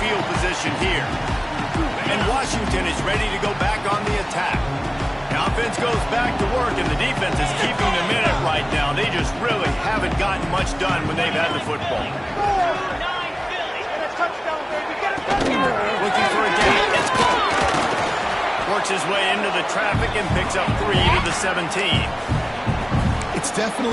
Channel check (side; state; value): both; identical; correlation 1.00